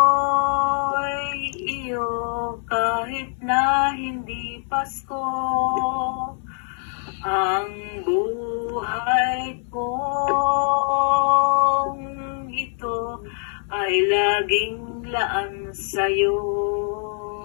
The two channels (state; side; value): silent; right; 59 dB below the other